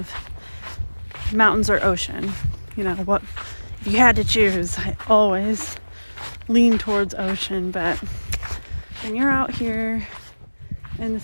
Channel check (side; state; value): both; inverted; correlation -1.00